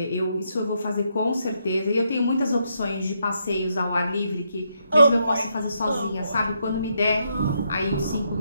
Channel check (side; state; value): both; inverted; correlation -0.78